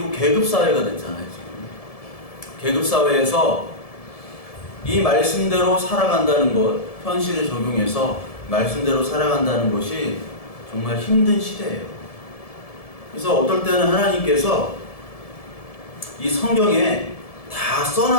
계급 사회가 됐잖아요. 지금 계급 사회에서 이 말씀대로 살아간다는 것, 현실에 적용해서 말씀대로 살아간다는 것이 정말 힘든 시대예요. 그래서 어떨 때는 하나님께서 이 성경에 다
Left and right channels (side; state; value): right; late; 1.7 ms